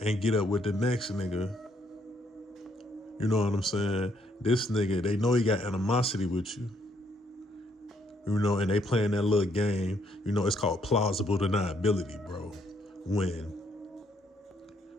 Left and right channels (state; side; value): normal; both; correlation 0.71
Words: get up with the next nigga. You know what I'm saying? This nigga, they know he got animosity with you. You know, and they playing that little game. You know, it's called plausible deniability, bro. When